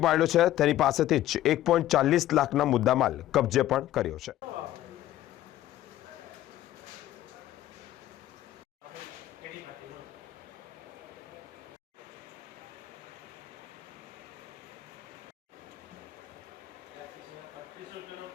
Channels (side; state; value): right; quieter; 13.8 dB